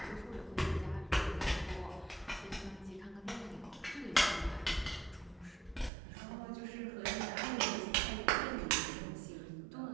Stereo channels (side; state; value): left; drops out; at 5.9 s